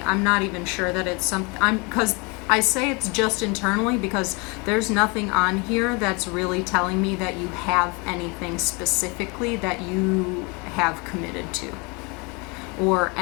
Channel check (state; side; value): quieter; right; 29.6 dB